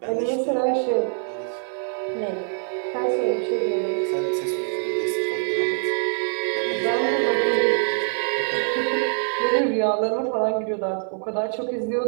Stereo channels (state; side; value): silent; left; 63 dB below the other